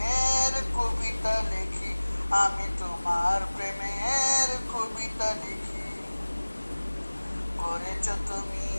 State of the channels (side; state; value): both; inverted; correlation -1.00